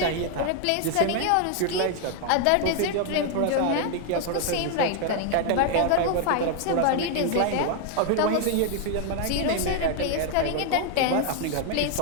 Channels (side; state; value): both; different; correlation 0.00